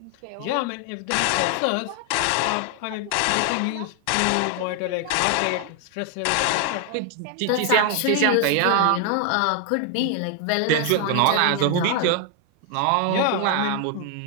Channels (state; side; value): different; both; correlation 0.00